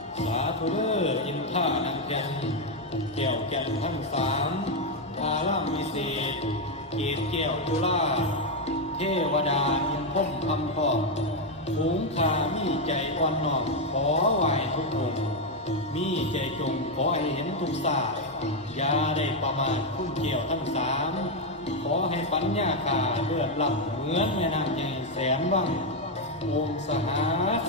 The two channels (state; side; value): normal; both; correlation 0.03